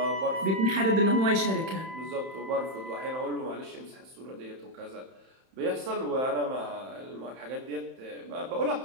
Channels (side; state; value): left; late; 31 ms